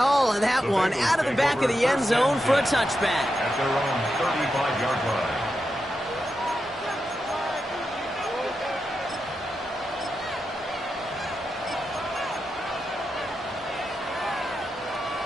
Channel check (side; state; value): both; normal; correlation 0.88